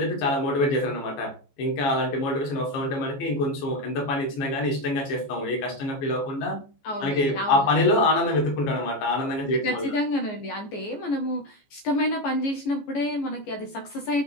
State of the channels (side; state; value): right; late; 14 ms